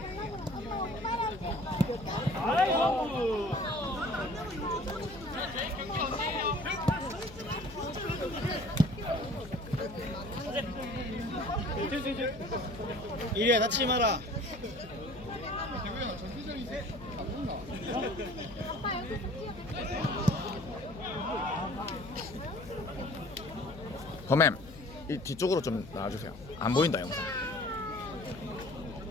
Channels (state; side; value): noise; left; hum, 16 dB below the sound